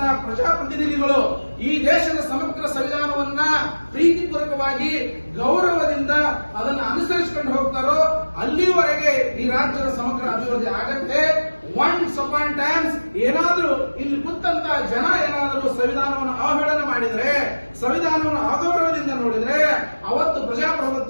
ಪ್ರಜಾಪ್ರತಿನಿಧಿಗಳು ಈ ದೇಶದ ಸಮಗ್ರ ಸಂವಿಧಾನವನ್ನ ಪ್ರೀತಿಪೂರ್ವಕವಾಗಿ ಗೌರವದಿಂದ ಅದನ್ನು ಅನುಸರಿಸಿಕೊಂಡು ಹೋಗ್ತಾರೋ ಅಲ್ಲಿವರೆಗೆ ಈ ರಾಜ್ಯದ ಸಮಗ್ರ ಅಭಿವೃದ್ಧಿ ಆಗತ್ತೆ. ಒನ್ಸ್ ಅಪಾನ್ ಟೈಮ್ಸ್ ಏನಾದ್ರೂ ಇಲ್ಲಿ ಕುಂತಂತ ಜನ ಏನಾದರೂ ಸಂವಿಧಾನವನ್ನು ಅವಹೇಳನ ಮಾಡಿದ್ರೆ, ಸಂವಿಧಾನವನ್ನು ಅಗೌರವದಿಂದ ನೋಡಿದ್ರೆ ಅವತ್ತು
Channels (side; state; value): both; inverted; correlation -1.00